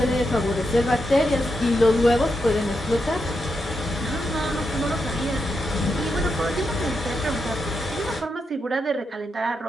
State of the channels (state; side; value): normal; both; correlation 0.84